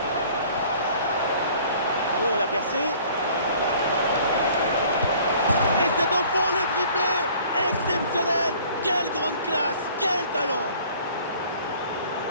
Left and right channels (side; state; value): both; inverted; correlation -0.52